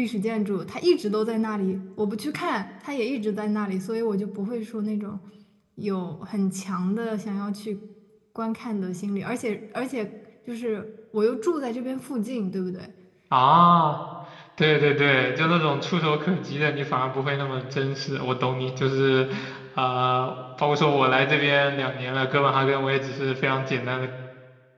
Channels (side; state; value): both; identical; correlation 1.00